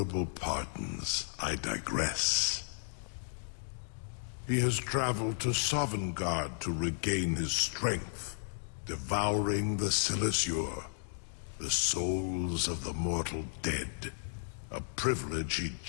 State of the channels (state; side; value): silent; right; digital silence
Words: pardons, I digress. He has traveled to Sovngarde to regain his strength, devouring the Silesur, the souls of the mortal dead, a privilege he